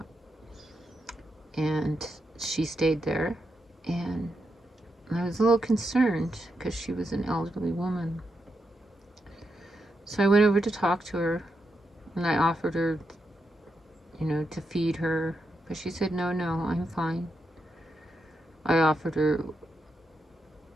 And she stayed there, and I was a little concerned because she was an elderly woman. So I went over to talk to her, and I offered her, to feed her, but she said, no, I'm fine. I offered her,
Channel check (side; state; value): both; normal; correlation 0.84